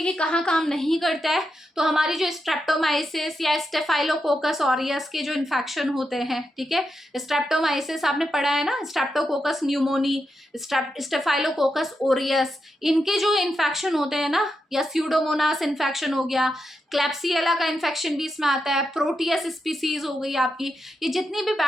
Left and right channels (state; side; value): normal; both; correlation 0.86